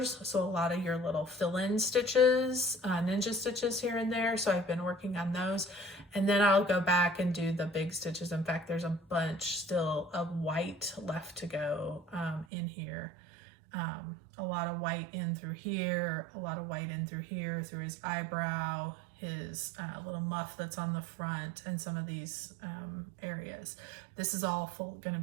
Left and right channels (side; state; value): left; drops out; at 12.5 s